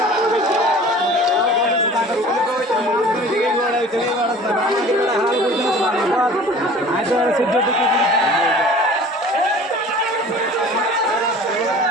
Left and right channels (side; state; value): both; normal; correlation 0.45